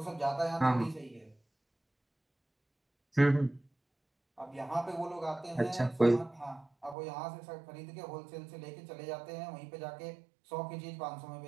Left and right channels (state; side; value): drops out; left; at 7.0 s